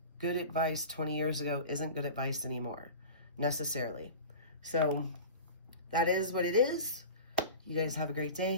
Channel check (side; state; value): both; inverted; correlation -0.34